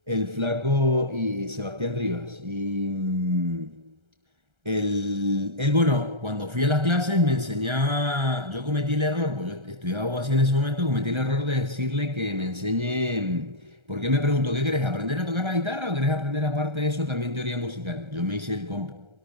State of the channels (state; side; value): late; left; 1.3 ms